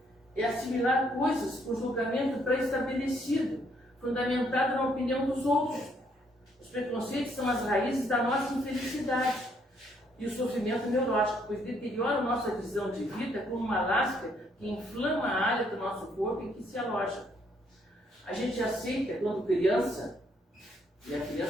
é assimilar coisas com julgamento pré-estabelecido, fundamentado na opinião dos outros. Os preconceitos são as raízes da nossa infelicidade e o sofrimento neurótico, pois deteriora nossa visão de vida como uma lasca que inflama a área do nosso corpo em que se aloja. A gente aceita, quando criança, e a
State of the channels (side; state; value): both; normal; correlation 0.69